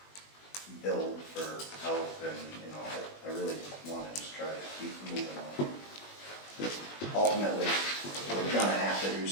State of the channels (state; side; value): late; right; 20 ms